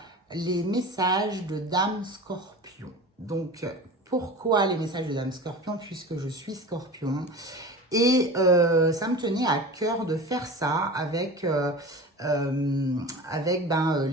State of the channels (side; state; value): both; normal; correlation 0.34